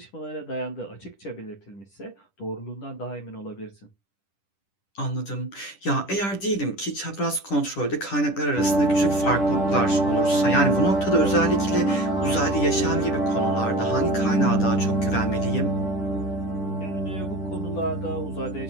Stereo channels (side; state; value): right; late; 10 ms